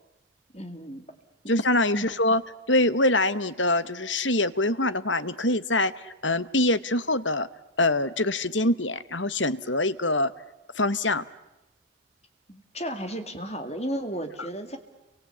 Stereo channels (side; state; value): both; normal; correlation -0.08